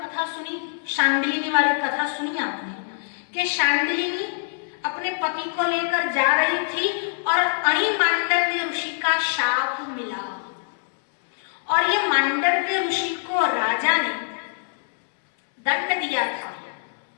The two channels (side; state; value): right; silent; 63 dB below the other